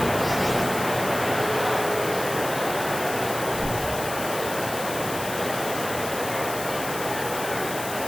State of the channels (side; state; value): left; noise; hiss, 8 dB below the sound